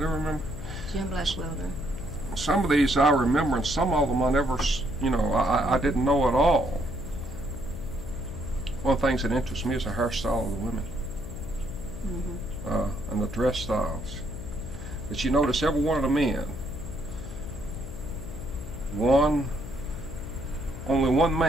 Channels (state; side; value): noise; left; hum, 12 dB below the sound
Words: remember. Jim Blackwelder. Some of these I remember, and some of them I never, I didn't know at all. One of the things that interests me is the hairstyle of the women. And the dress styles. But you notice every one of the men, only one